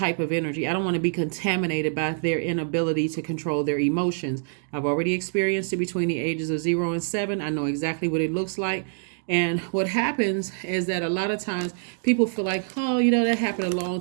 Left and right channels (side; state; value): left; silent; digital silence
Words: of energy. I don't want to be contaminated by their inability to control their emotions. I've already experienced it between the ages of 0 and 7. I know exactly what it looks like. And what happens is that a lot of times people feel like, oh, that happened a